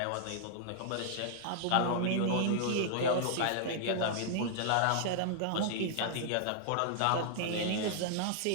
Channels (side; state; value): both; different; correlation -0.01